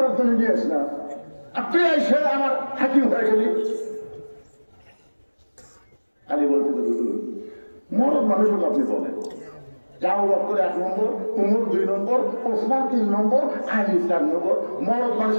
জন্য নিয়ে আস না, আপনি এসে আমার হাকিম হয়ে গেলি। আলী বলতে মরদ মানুষকে আপনি বলেন যাও করে 1 নম্বর, উমর 2 নম্বর, ওসমান 3 নম্বর, আলী 4 নম্বর। মরদ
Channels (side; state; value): both; inverted; correlation -1.00